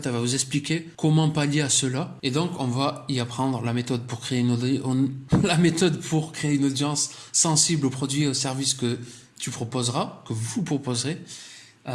elle va vous expliquer comment pallier à cela. Et donc, on va y apprendre la méthode pour créer une audience sensible aux produits et aux services que tu proposeras, que vous proposerez.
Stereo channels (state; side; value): identical; both; correlation 1.00